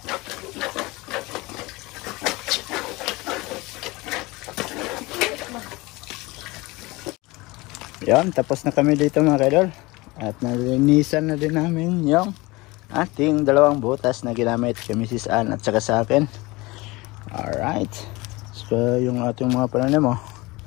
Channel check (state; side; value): quieter; right; 22.5 dB